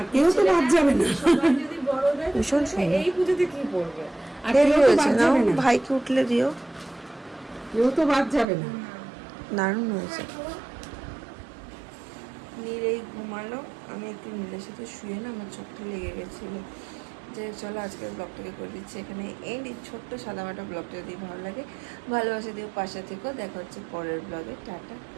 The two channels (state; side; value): drops out; left; at 8.5 s